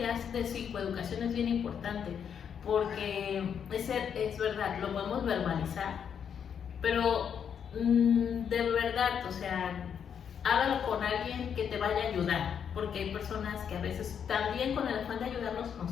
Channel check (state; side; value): quieter; right; 7.8 dB